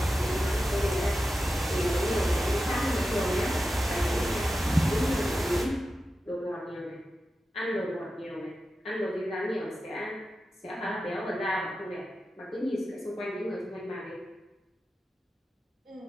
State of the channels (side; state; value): both; normal; correlation 0.92